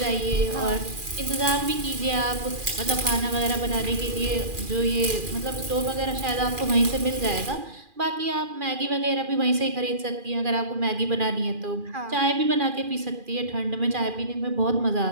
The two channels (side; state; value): left; late; 2.4 ms